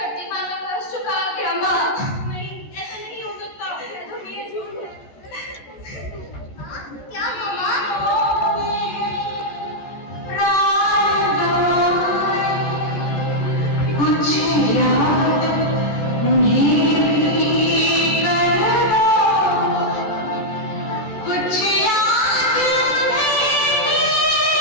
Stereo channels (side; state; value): right; late; 14 ms